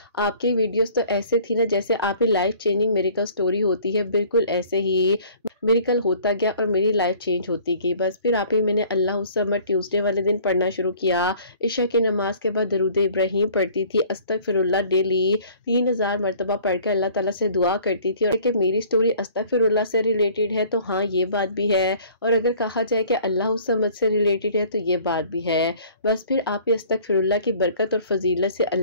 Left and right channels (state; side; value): inverted; both; correlation -0.52